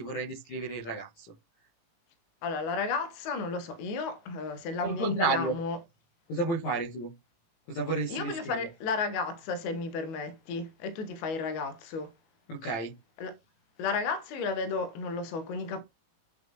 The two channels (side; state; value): right; late; 18 ms